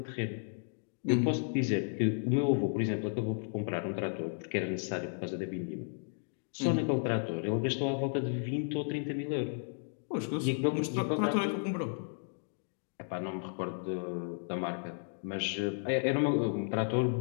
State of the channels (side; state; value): right; silent; digital silence